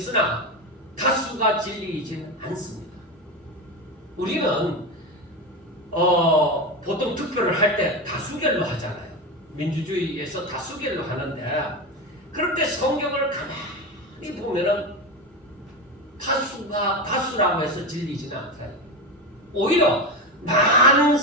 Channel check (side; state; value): both; normal; correlation 0.18